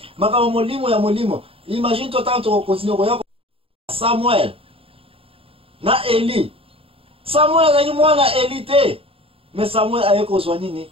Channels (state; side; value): late; left; 0.27 ms